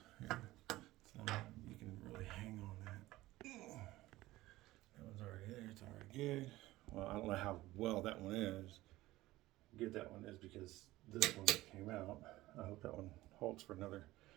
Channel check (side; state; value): left; quieter; 17.4 dB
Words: Here. So you can really hang on that. That one's already there. It's already good. Well, I don't know how well that one is. Good that one is because this one came out. I hope that one holds for another